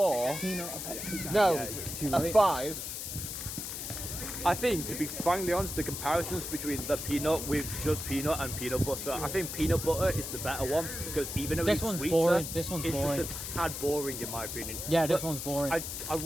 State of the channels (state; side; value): noise; left; hiss, 6 dB below the sound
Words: Peanut, a Pepsi. No, Yeah, too a late. 5. I think, to be frankly honest, the comparisons between the peanut with just peanut and peanut butter, I think peanut butter is the better one, because even though This it's one's sweeter, boring. This one's it's boring. just a tad boring in my opinion. Yeah, this But one's boring. I